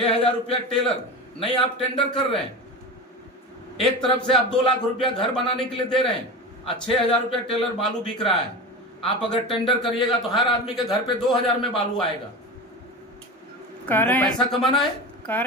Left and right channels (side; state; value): both; normal; correlation 0.27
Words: रुपया टेलर नहीं, आप टेंडर कर रहे हैं। एक तरफ से आप 2 लाख रुपया घर बनाने के लिए दे रहे हैं और 6000 रुपया टेलर बालू बिक रहा है। आप अगर टेंडर करिएगा तो हर आदमी के घर पे 2000 में बालू आएगा। पैसा कमाना है। कह